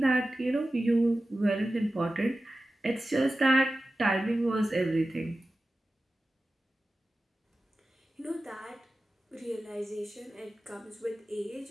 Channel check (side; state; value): both; normal; correlation 0.94